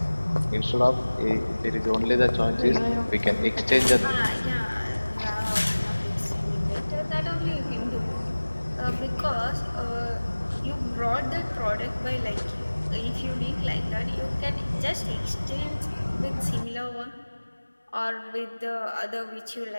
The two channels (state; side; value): inverted; both; correlation -1.00